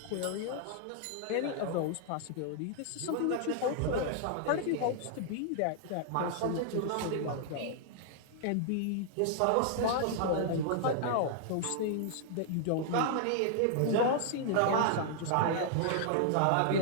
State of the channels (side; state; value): both; different; correlation -0.01